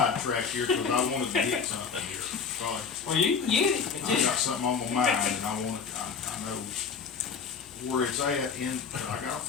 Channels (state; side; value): quieter; right; 5.8 dB